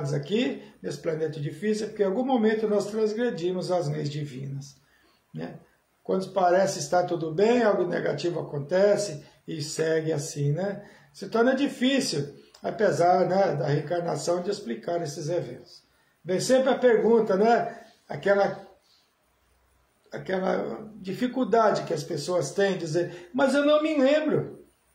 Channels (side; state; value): both; identical; correlation 1.00